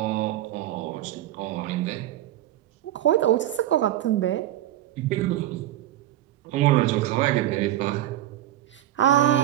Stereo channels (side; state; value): left; quieter; 13.4 dB